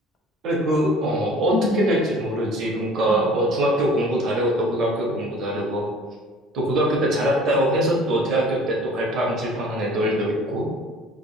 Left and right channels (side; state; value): both; normal; correlation 0.49